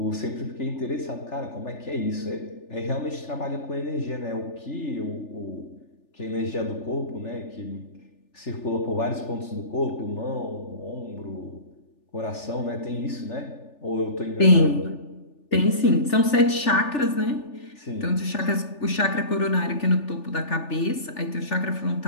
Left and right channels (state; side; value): late; right; 3.4 ms